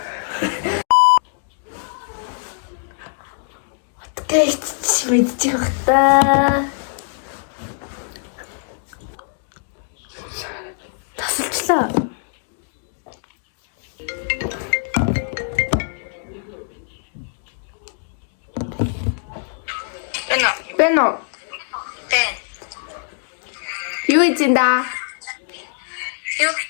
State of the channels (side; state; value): right; silent; digital silence